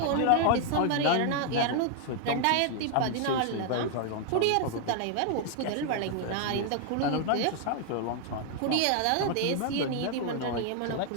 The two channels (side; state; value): both; different; correlation 0.00